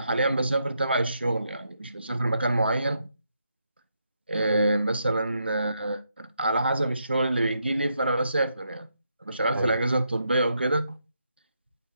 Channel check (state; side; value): inverted; both; correlation -0.79